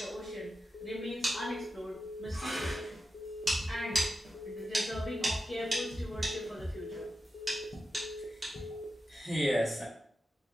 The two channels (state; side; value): normal; both; correlation 0.90